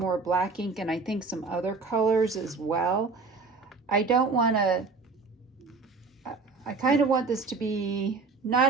black ink and I think some other colors as well. I kind of want this to be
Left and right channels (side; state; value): left; quieter; 4.3 dB